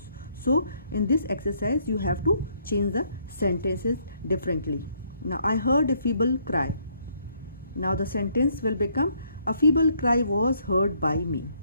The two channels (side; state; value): both; inverted; correlation -0.69